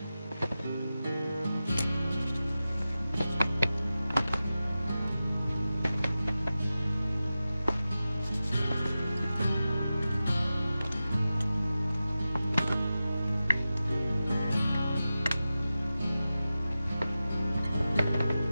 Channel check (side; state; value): both; inverted; correlation -0.93